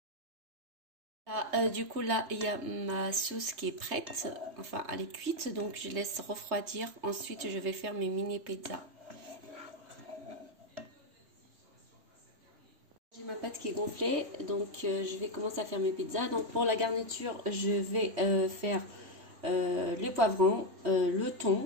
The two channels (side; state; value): left; late; 3.2 ms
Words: Du coup là il y a ma sauce qui est prête, enfin elle est cuite, donc je laisse refroidir. Ensuite je vais faire mes mini pizzas. J'ai ma pâte qui est gonflée, donc je vais commencer à faire mes pizzas. Donc pour la garniture je vais faire les poivrons, le